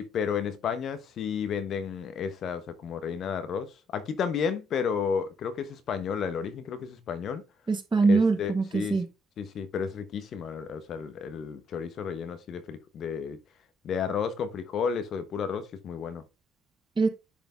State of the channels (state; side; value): normal; both; correlation 0.72